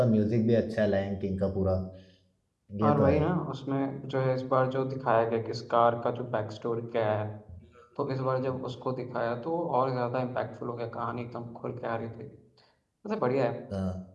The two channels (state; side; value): identical; both; correlation 1.00